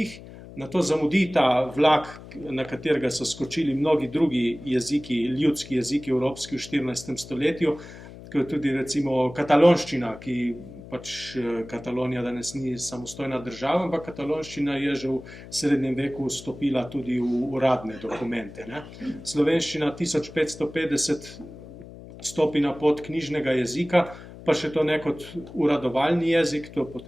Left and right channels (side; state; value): left; noise; hum, 16 dB below the sound